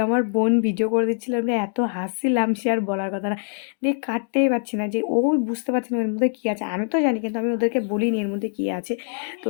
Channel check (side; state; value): right; silent; 63 dB below the other